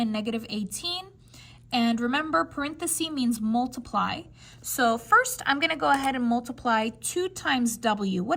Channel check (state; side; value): identical; both; correlation 1.00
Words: negative 18. And remember, parenthesis means multiply. So first, I'm going to go ahead and multiply 2 times w.